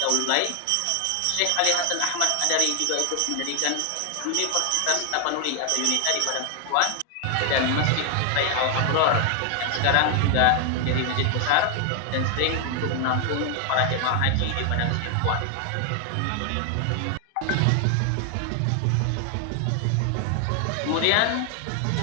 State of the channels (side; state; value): both; different; correlation 0.00